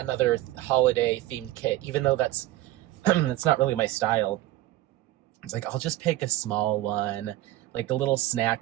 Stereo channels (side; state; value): left; quieter; 15.7 dB